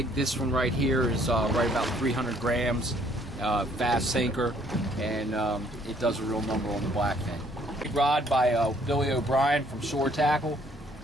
This one right here is right about 300 grams, fast sinker, and it does a real number on the blackfin. Big rod by Billy O'Brien from Shore Tackle,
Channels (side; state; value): both; normal; correlation 0.63